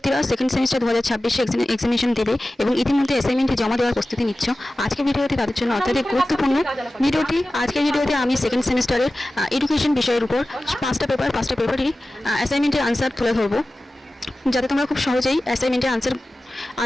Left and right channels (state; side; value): normal; both; correlation 0.96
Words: সেকেন্ড সেমিস্টার 2026 এক্সামিনেশন দেবে এবং ইতিমধ্যে অ্যাসাইনমেন্ট জমা দেওয়ার প্রস্তুতি নিচ্ছ, আজকের ভিডিওটি তাদের জন্য অত্যাধিক গুরুত্বপূর্ণ। আজকের ভিডিওতে আমি সেকেন্ড সেমিস্টারের এডুকেশন বিষয়ের উপর পাঁচটা পেপারই অ্যাসাইনমেন্টের আনসার তুলে ধরবো, যাতে তোমরা খুব সহজেই অ্যাসাইনমেন্টের